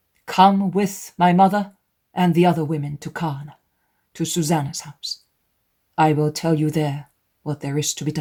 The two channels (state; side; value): identical; both; correlation 1.00